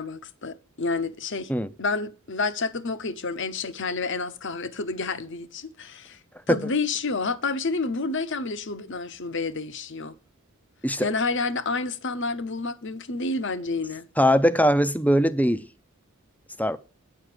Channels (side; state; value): both; normal; correlation 0.49